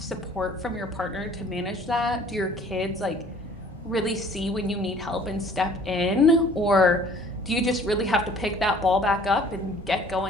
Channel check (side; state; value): both; normal; correlation 0.53